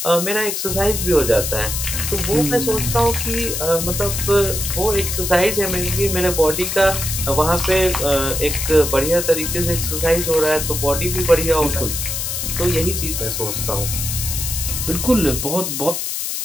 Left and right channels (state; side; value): noise; left; hiss, 3 dB below the sound